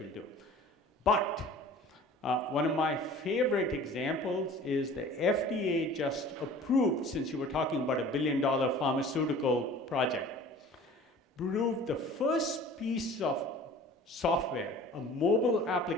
do. But one of my favorite examples is the FDA just approved, since you were talking about $1 billion pharmaceutical project, approved the first piece of software, a mobile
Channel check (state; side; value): normal; both; correlation 0.45